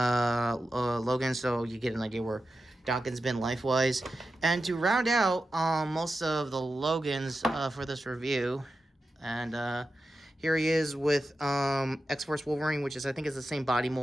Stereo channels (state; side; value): normal; both; correlation 0.91